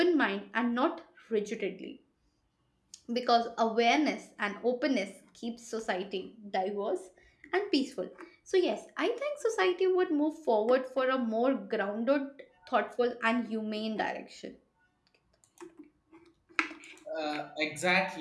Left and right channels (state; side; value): identical; both; correlation 1.00